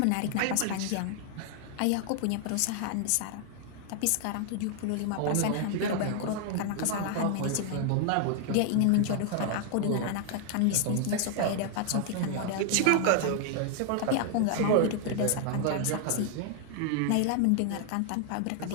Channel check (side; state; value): both; different; correlation 0.00